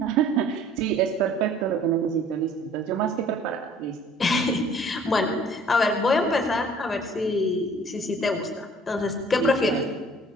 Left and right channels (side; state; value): both; normal; correlation 0.53